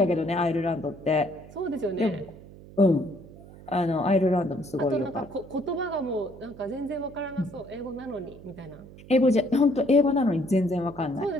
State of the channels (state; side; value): noise; right; hum, 19 dB below the sound